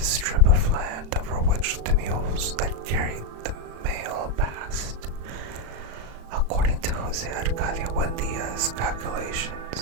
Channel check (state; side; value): late; left; 36 ms